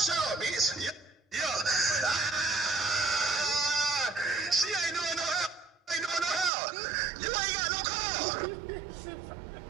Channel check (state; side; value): drops out; left; at 6.5 s